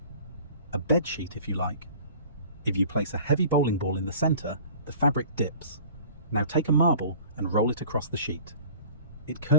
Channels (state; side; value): inverted; both; correlation -0.46